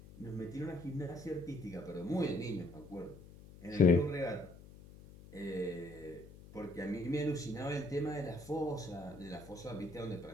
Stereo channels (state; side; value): noise; left; hum, 18 dB below the sound